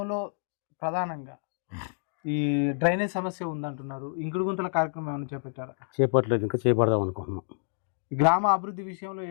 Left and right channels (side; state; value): right; silent; digital silence